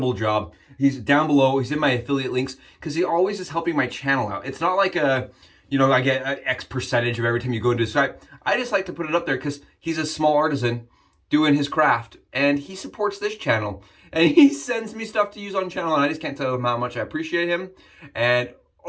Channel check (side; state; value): both; identical; correlation 1.00